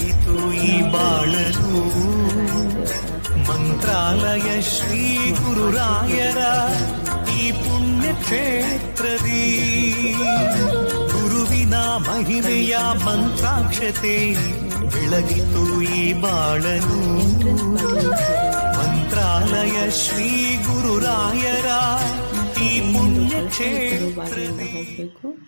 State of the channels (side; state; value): both; inverted; correlation -1.00